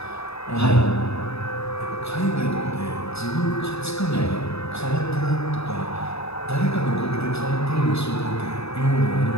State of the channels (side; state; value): right; late; 0.79 ms